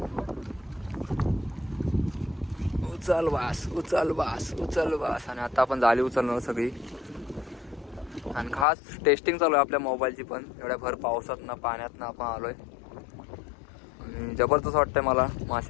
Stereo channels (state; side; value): drops out; right; at 8.7 s